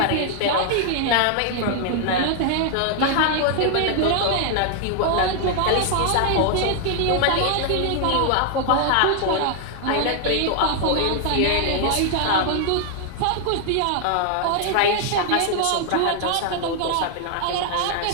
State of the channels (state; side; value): different; both; correlation 0.00